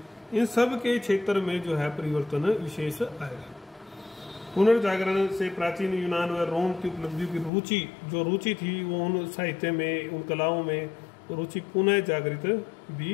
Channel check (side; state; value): right; drops out; at 7.5 s